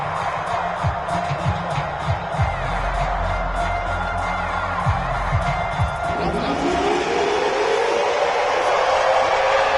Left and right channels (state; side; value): identical; both; correlation 1.00